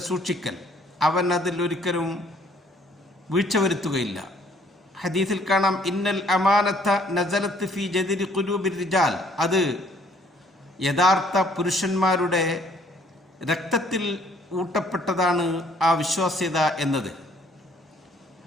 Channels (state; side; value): normal; both; correlation 0.61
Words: സൂക്ഷിക്കൽ. അവൻ അതിൽ ഒരിക്കലും വീഴ്ച വരുത്തുകയില്ല. ഹദീസിൽ കാണാം, ഇന്നൽ അമാനത്ത നസലത്ത് ഫി ജദരി ഖുലൂബിർ റിജാൽ. അത് യഥാർത്ഥ പുരുഷന്മാരുടെ രക്തത്തിൽ ഊട്ടപ്പെട്ടതാണ് ആ വിശ്വാസ്യത എന്നത്.